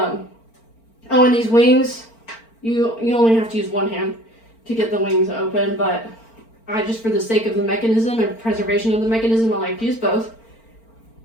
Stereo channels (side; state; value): right; late; 4.4 ms